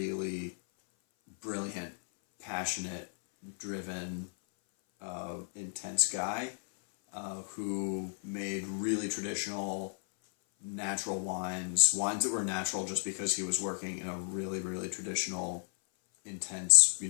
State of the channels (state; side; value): silent; right; 55 dB below the other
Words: brilliant, passionate, driven, intense guy who made really traditional, natural wines that were natural just because he was working in a really, really traditional, intense,